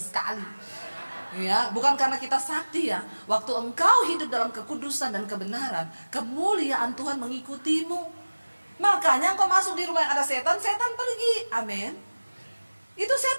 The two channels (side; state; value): both; inverted; correlation -1.00